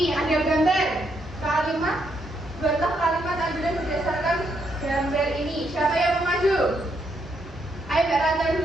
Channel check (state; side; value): normal; both; correlation 0.76